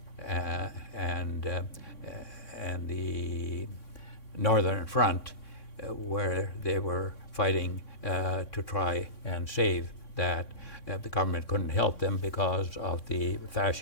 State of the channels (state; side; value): late; right; 3.6 ms